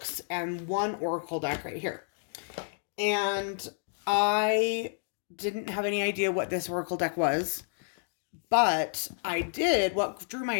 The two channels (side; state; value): right; silent; digital silence